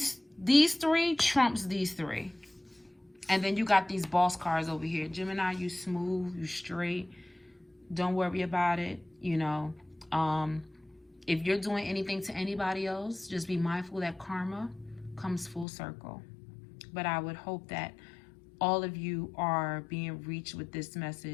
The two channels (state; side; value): drops out; right; at 15.7 s